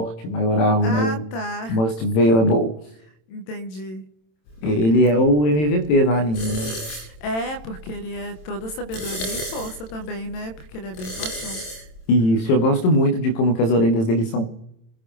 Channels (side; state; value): right; late; 27 ms